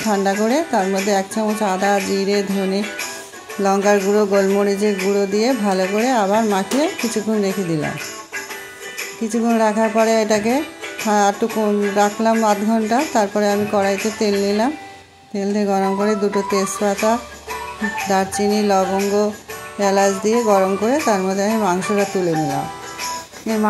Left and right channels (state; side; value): identical; both; correlation 1.00